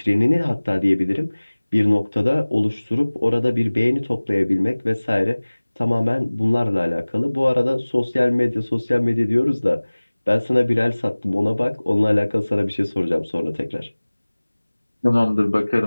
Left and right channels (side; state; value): both; inverted; correlation -1.00